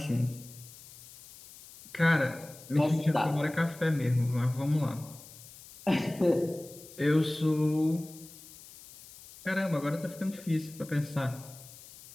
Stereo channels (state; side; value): noise; left; hiss, 19 dB below the sound